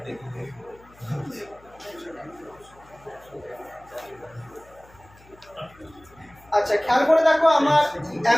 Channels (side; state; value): left; noise; hum, 26 dB below the sound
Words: আচ্ছা খেয়াল করে দেখো আমার